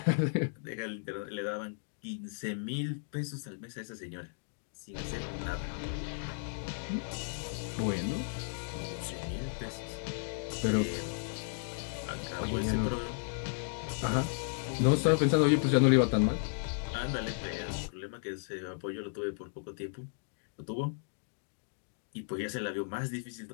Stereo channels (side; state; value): right; silent; digital silence